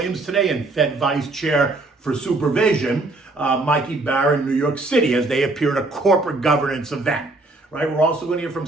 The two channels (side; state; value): left; quieter; 3.0 dB